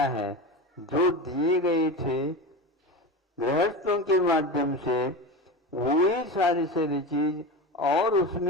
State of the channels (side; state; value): both; normal; correlation 0.24